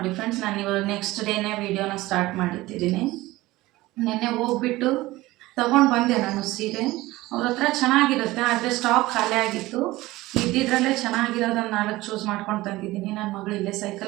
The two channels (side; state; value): left; quieter; 18.6 dB